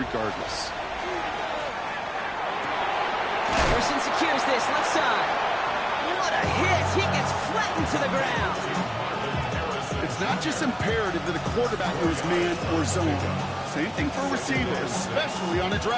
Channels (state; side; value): identical; both; correlation 1.00